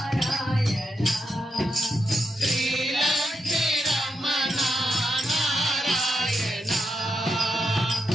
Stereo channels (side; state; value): both; normal; correlation 0.84